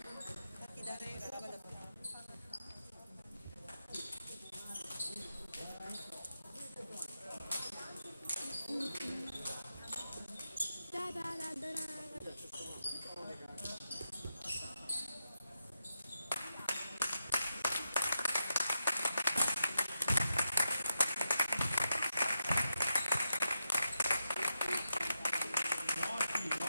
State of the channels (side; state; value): both; inverted; correlation -0.87